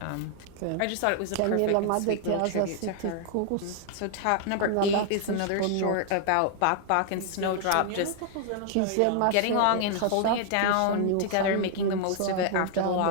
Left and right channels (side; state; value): both; different; correlation 0.00